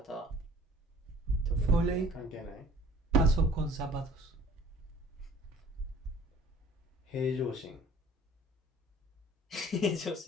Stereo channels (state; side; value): normal; both; correlation 0.51